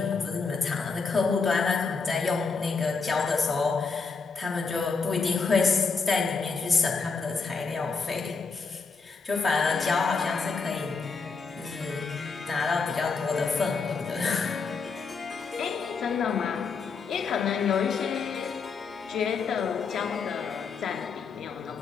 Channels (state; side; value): quieter; right; 4.9 dB